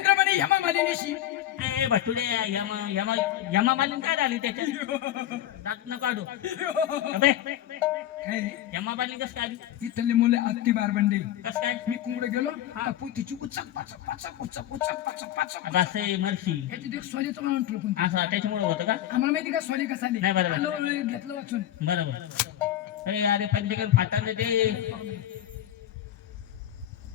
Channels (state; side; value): quieter; right; 12.3 dB